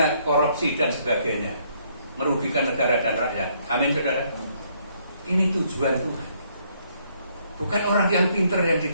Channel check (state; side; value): inverted; both; correlation -0.69